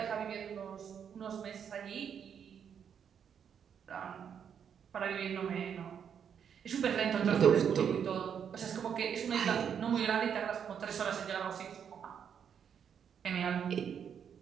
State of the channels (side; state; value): left; quieter; 7.9 dB